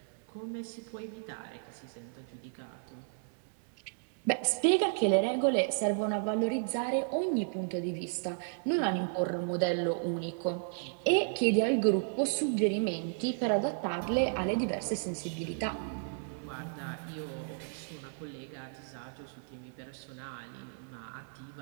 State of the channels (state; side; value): silent; left; 55 dB below the other